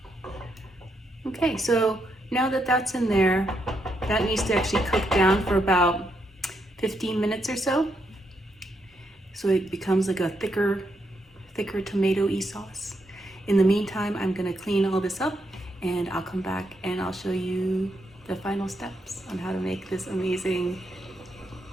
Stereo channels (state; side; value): normal; both; correlation 0.80